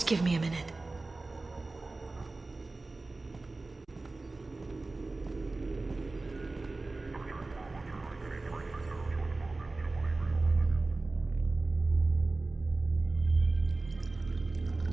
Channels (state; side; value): quieter; left; 3.3 dB